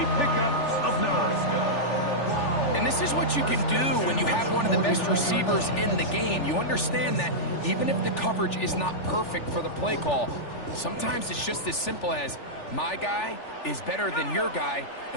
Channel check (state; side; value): late; right; 3.4 ms